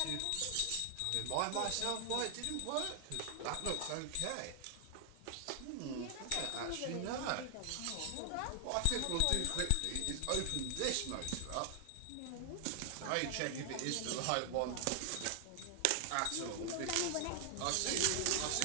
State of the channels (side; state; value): both; different; correlation 0.00